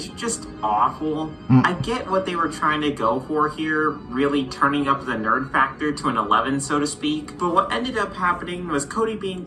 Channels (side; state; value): both; identical; correlation 1.00